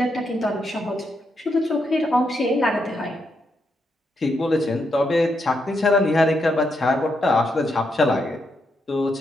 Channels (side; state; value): both; normal; correlation 0.81